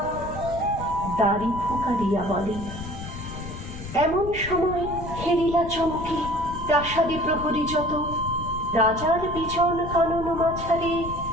দাড়ি ফুকারিয়া বলে। এমন সময় হেরিলা চমকে প্রাসাদে প্রহরী যত, রাজার বিজন কানন মাঝারে,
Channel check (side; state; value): left; noise; rumble, 10 dB below the sound